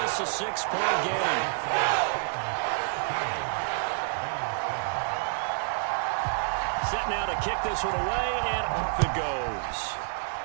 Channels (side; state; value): left; silent; digital silence